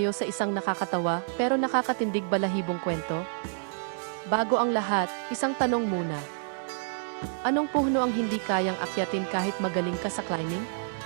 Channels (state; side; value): silent; left; digital silence